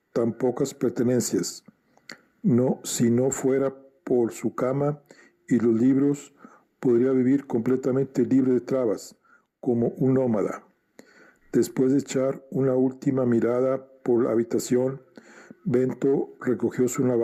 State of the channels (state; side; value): identical; both; correlation 1.00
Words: tan pocas pertenencias. Si no fuera por su cama y los libros, podría vivir completamente libre de trabas, como un nómada. Después de echar una última mirada por la habitación, Bento recogió su